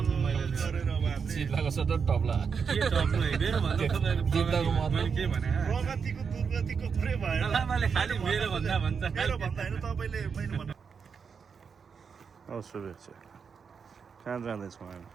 मैले गरेर अब हामीले जित्दाको सट्टा टप्ला के टप्ला मेरो भन्दा तपाईँको जित्दाको मतलब के भने प्रगतिको दुर्गतिको कुरै भएन। लामाले खालि मेरो भन्दा भन्छ मेरो भन्दा होइन तपाईँले मैले भन्नु। शुभेच्छा। कहाँ जाँदैछौँ हामी?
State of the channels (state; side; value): quieter; left; 6.1 dB